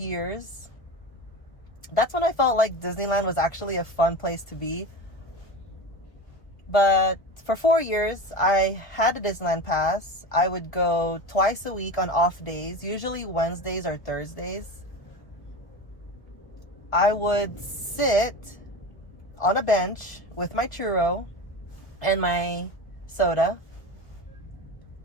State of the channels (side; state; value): right; late; 1.2 ms